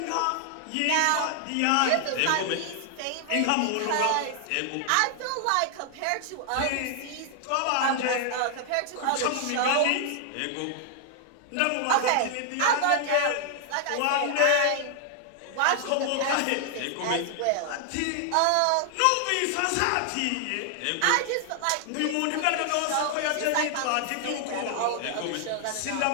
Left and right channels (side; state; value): both; different; correlation 0.00